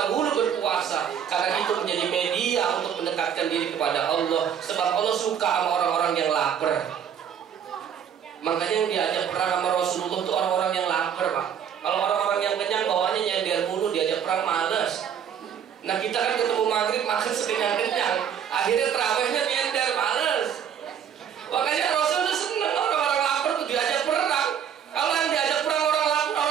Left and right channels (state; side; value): quieter; left; 8.5 dB